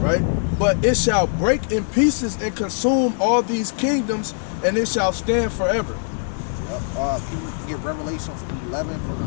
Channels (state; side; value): silent; right; 64 dB below the other